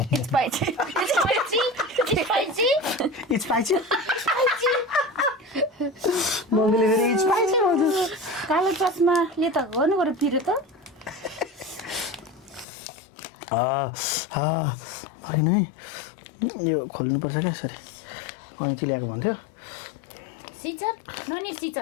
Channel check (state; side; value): drops out; right; at 12.7 s